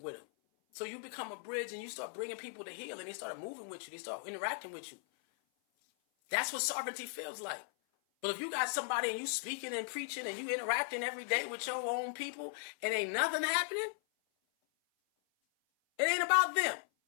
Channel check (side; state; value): right; silent; 53 dB below the other